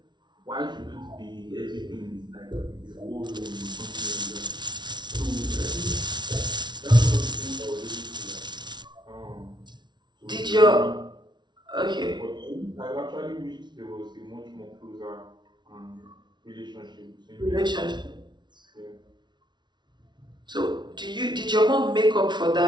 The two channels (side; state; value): left; late; 0.21 ms